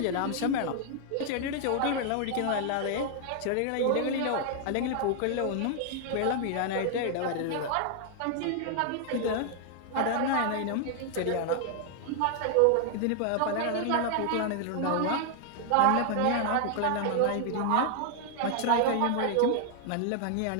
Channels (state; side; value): different; both; correlation 0.00